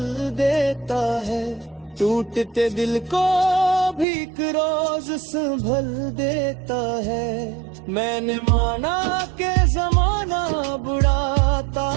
देता है, टूटते दिल को भी एक रोज संभल देता है। मैंने माना कि जमाना बुरा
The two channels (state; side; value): drops out; left; at 4.0 s